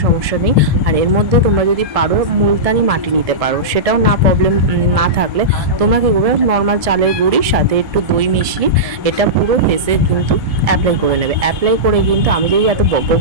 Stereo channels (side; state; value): left; late; 1.7 ms